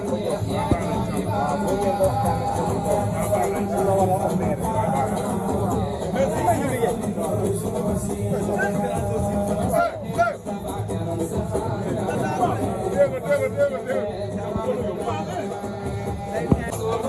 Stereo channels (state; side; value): identical; both; correlation 1.00